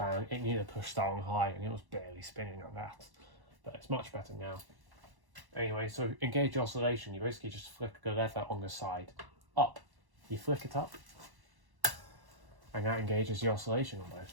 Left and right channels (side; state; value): left; late; 1.1 ms